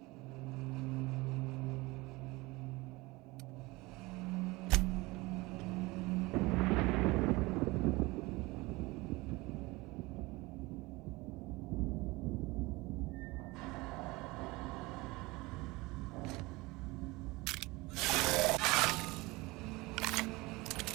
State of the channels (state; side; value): quieter; left; 22.5 dB